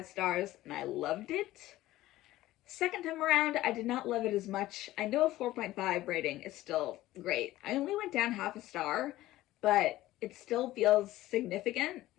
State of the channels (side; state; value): right; quieter; 15.9 dB